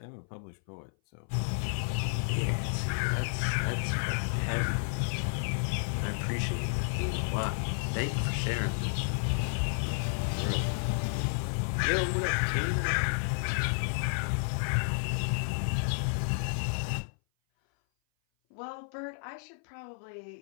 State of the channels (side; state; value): right; silent; 57 dB below the other